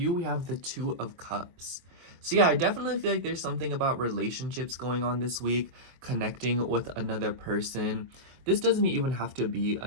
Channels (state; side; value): late; left; 23 ms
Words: we have the Two of Cups. So yeah, I definitely feel like there's something about relationships going on this week, connecting with another person. This doesn't even have to be